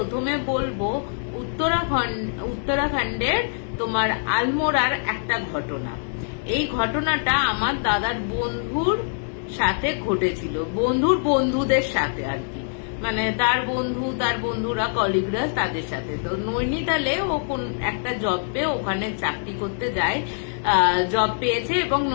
বলবো উত্তরাখণ্ডের তোমার আলমোড়ার একটা ঘটনা। এই ঘটনাটা আমার দাদার বন্ধুর সাথে ঘটেছিল, বন্ধুদের সাথে আর কি, মানে তার বন্ধুরা কলিগরা তাদের সাথে। তো নৈনিতালে ও কোন একটা জব পেয়ে ওখানে চাকরি করতে যায়, জব পেয়েছে এবং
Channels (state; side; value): silent; right; digital silence